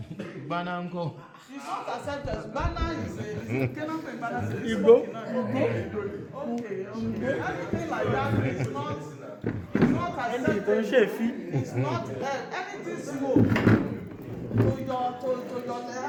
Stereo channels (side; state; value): both; identical; correlation 1.00